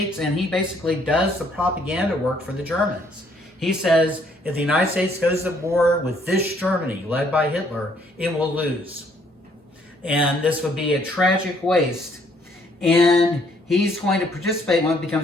and he basically does the propaganda work for the Germans. He says, if the United States goes to war with this Germany, led by Hitler, it will lose. And this would be a tragic waste. And he's going to participate in what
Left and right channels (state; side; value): normal; both; correlation 0.66